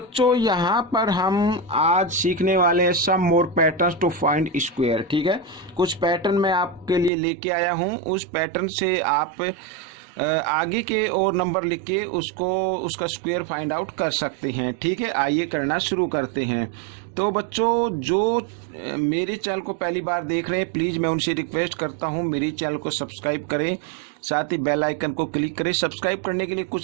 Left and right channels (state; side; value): drops out; left; at 7.1 s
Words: यहाँ पर हम आज सीखने वाले हैं सम मोर पैटर्न्स टू फाइंड स्क्वायर। ठीक है, कुछ पैटर्न मैं आपके लिए लेके आया हूँ। उस पैटर्न से आप आगे के और नंबर लिख के उसका स्क्वायर फाइंड आउट कर सकते हैं। ठीक है, आइए करना शुरू करते हैं। तो बच्चों, जो मेरे चैनल को पहली बार देख रहे हैं, प्लीज़ मैं उनसे रिक्वेस्ट करता हूं मेरे चैनल को सब्सक्राइब करें, साथ ही बेल आइकन को क्लिक करें। सब्सक्राइब करने के लिए